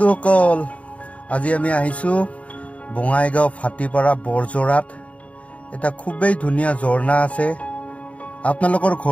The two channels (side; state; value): right; late; 0.066 ms